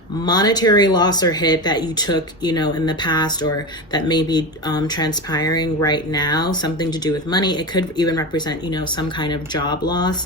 monetary loss or hit that you took, you know, in the past, or that may be transpiring right now, something to do with money. It could even represent, you know, some kind of job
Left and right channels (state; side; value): normal; both; correlation 0.22